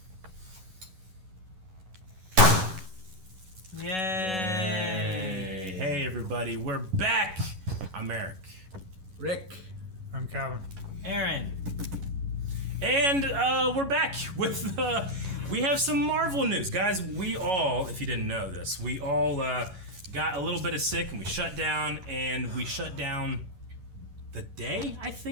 Yay! Hey everybody, we're back! I'm Eric. Rick. I'm Calvin. Aaron. And we're back with, we have some Marvel news. Guys, we all, if you didn't know this, we all got a little bit of sick and we shut down the day I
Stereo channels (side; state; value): left; late; 11 ms